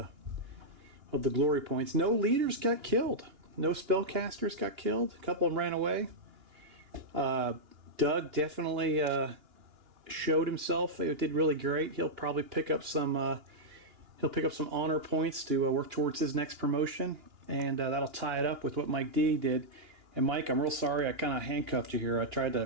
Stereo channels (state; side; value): late; left; 2.8 ms